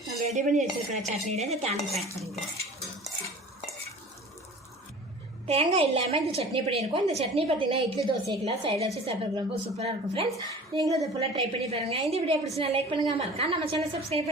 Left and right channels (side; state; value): both; normal; correlation 0.42